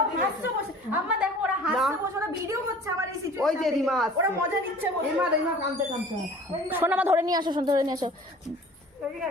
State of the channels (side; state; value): both; normal; correlation 0.46